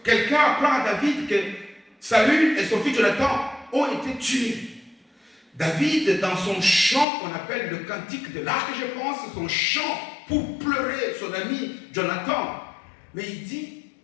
quelqu'un apprend à David que Saül et son fils Jonathan ont été tués. David, dans son chant qu'on appelle le cantique de l'arc, je pense, son chant pour pleurer son ami Jonathan, mais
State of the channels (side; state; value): right; drops out; at 7.1 s